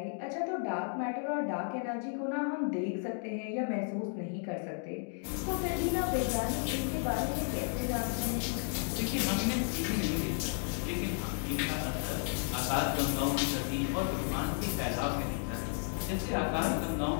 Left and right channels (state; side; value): silent; right; 56 dB below the other